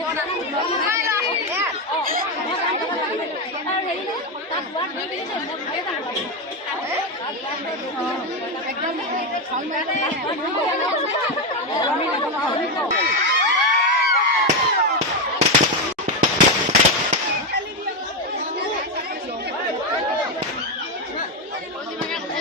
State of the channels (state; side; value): normal; both; correlation 0.09